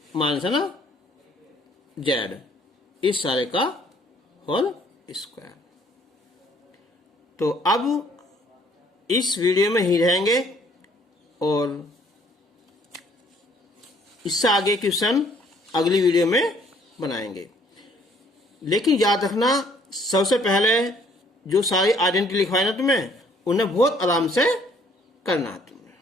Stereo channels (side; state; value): both; normal; correlation 0.62